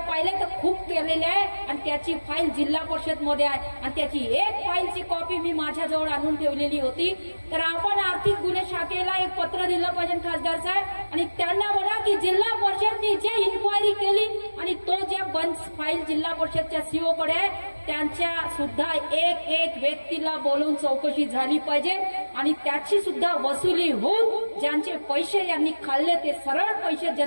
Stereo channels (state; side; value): inverted; both; correlation -1.00